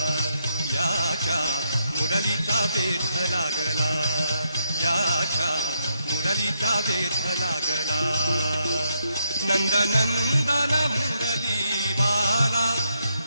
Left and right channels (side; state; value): both; inverted; correlation -0.77